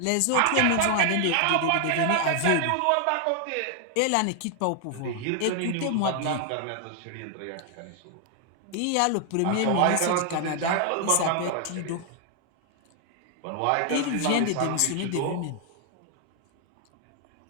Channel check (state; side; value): different; both; correlation 0.00